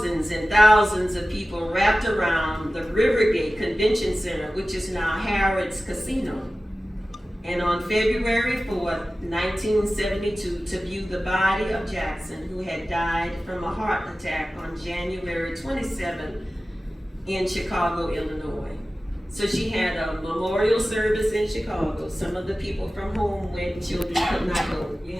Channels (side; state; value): both; normal; correlation 0.96